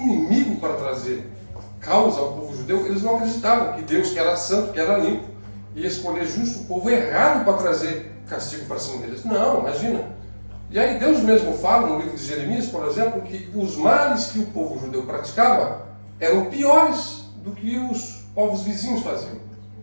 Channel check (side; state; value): both; inverted; correlation -1.00